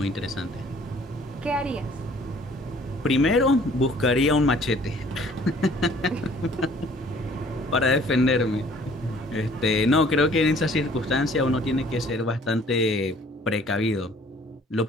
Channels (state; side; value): normal; both; correlation 0.55